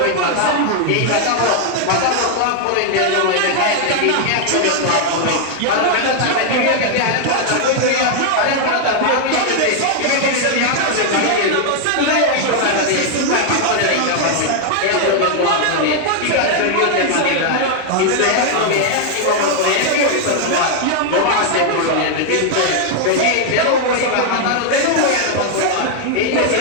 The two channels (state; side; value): different; both; correlation 0.00